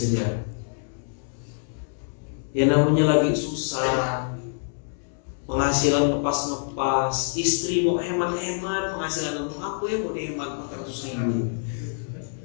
Ya namanya lagi susah. Penghasilan ngepas-ngepas, istri mau hemat-hemat, penghasilan untuk aku ya mau dihemat 400.000.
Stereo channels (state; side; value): silent; right; 61 dB below the other